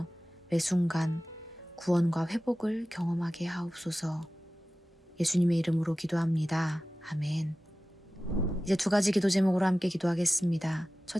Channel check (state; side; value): normal; both; correlation 0.96